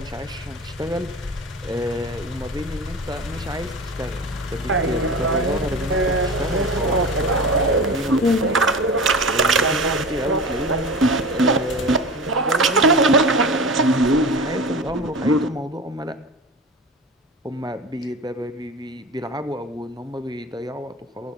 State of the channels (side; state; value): both; normal; correlation 0.31